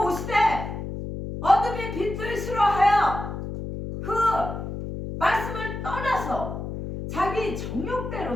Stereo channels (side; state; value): left; noise; hum, 6 dB below the sound